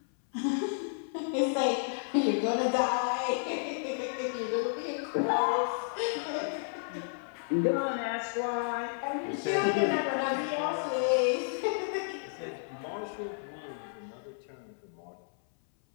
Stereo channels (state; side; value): silent; right; 57 dB below the other